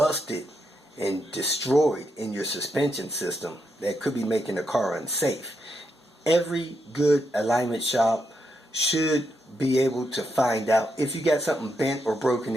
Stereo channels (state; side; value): normal; both; correlation 0.81